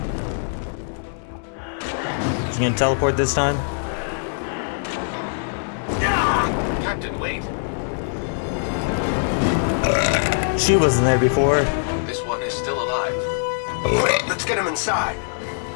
You gonna teleport this time? Captain, wait. She wasn't there before. This one is still alive. Quick, let's get him inside.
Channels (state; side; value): silent; right; digital silence